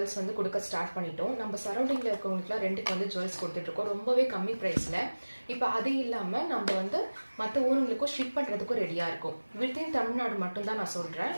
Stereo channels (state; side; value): inverted; both; correlation -1.00